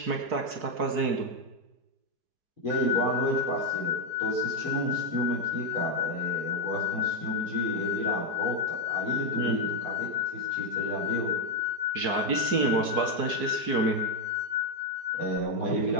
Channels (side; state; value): left; late; 4.6 ms